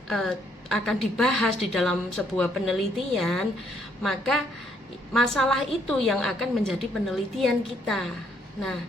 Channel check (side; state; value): both; normal; correlation 0.70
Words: dibahas di dalam sebuah penelitian, maka masalah itu yang akan menjadi penelitian kita. Nah,